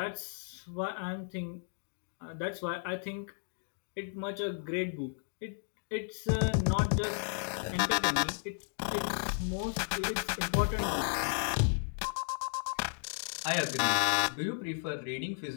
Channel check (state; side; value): silent; right; digital silence